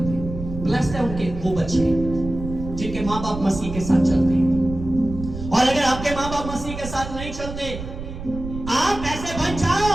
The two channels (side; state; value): right; noise; rumble, 9 dB below the sound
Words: ब्लेस्ड है उनके वो बच्चे जिनके माँ बाप मसीह के साथ चलते हैं। और अगर आपके माँ बाप मसीह के साथ नहीं चलते, आप ऐसे बन जाओ